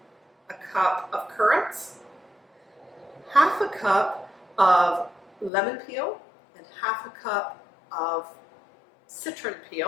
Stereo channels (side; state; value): right; drops out; at 5.5 s